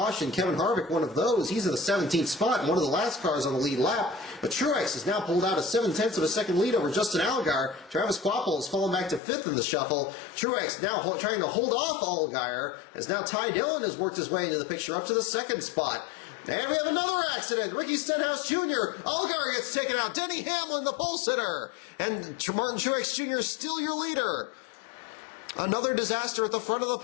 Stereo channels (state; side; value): drops out; right; at 9.2 s